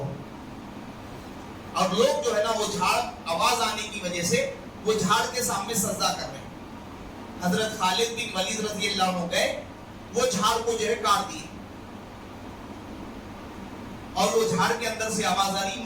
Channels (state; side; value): identical; both; correlation 1.00